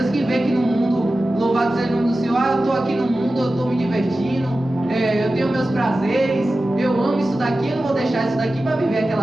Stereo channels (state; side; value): normal; both; correlation 0.94